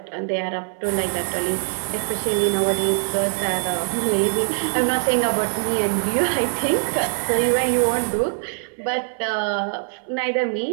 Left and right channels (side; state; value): left; silent; 61 dB below the other